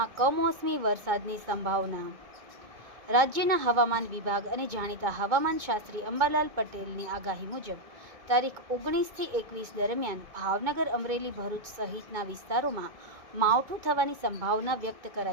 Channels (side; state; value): left; late; 2.2 ms